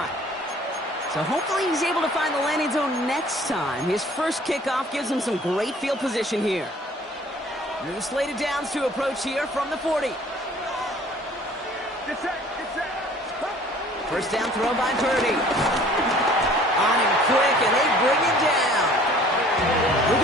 So hopefully he's able to find the landing zone next time. His first kickoff gives him some great field position here. New slated downs to approach here from the 40. First down throw by Purdy. On him quick, and they bring him down.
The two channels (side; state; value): both; normal; correlation 0.52